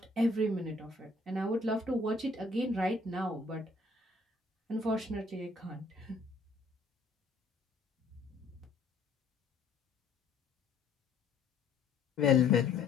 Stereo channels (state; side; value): quieter; right; 3.4 dB